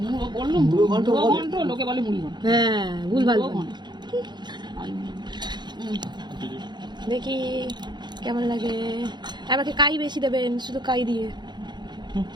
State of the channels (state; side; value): late; left; 0.21 ms